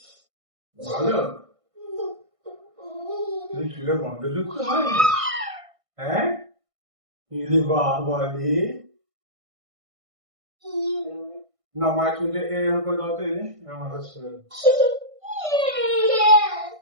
ভালো। তুমি চুলের গন্ধ শুকতে হয়? হ্যাঁ, ইরে বাবা রে। না, মায়ের চুলটা এরকম করে দাও তো, এই যে এরকম মাসাজ করে দাও।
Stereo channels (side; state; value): left; late; 1.6 ms